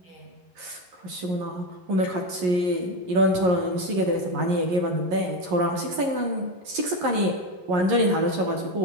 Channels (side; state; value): left; late; 11 ms